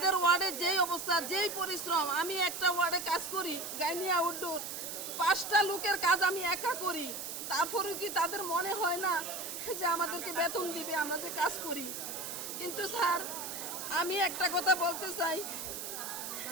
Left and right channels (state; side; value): noise; right; hiss, 7 dB below the sound